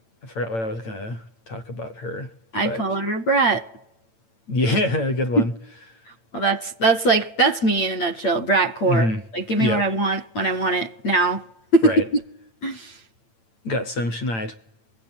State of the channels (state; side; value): late; right; 8.9 ms